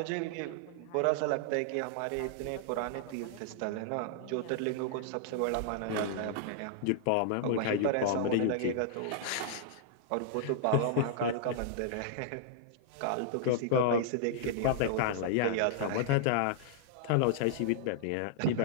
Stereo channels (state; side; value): different; both; correlation -0.01